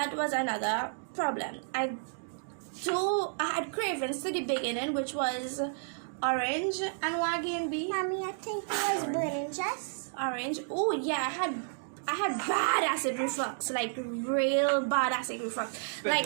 was another problem. I had cravings to the beginning, which was orange and wagon B. Mommy, I think it was burning just. Orange. Oh yeah, I had bad acid reflux, like real bad acid reflux.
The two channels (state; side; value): silent; left; digital silence